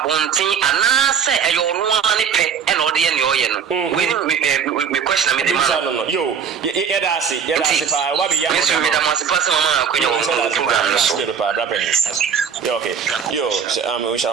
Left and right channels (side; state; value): left; quieter; 7.1 dB